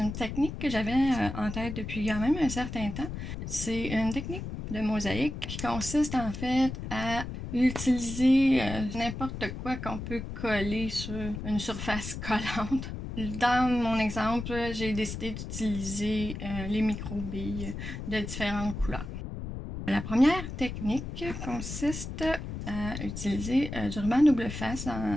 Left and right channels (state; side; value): noise; left; rumble, 7 dB below the sound